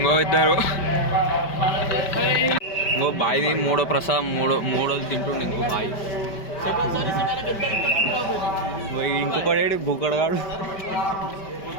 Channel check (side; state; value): right; late; 5.1 ms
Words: ఇద్దరు ఇంకో బాయ్ది మూడో ప్రసాదం మూడోది తింటుండే ఇంకో బాయ్ ఇంకొకటి బుక్కడగాడు